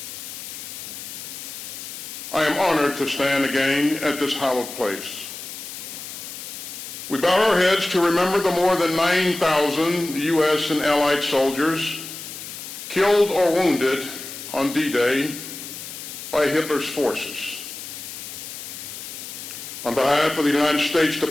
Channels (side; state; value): left; noise; hiss, 10 dB below the sound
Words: I am honored to stand again at this hallowed place. We bow our heads to remember the more than 9,000 U.S. and Allied soldiers killed or wounded on D-Day by Hitler's forces. On behalf of the United States